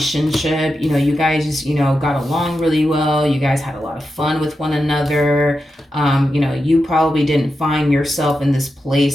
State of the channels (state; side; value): normal; both; correlation 0.89